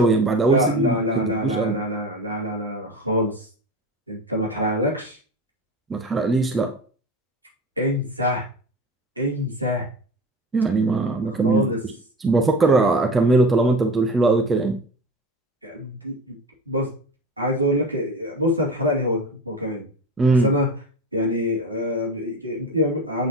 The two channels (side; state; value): both; normal; correlation 0.32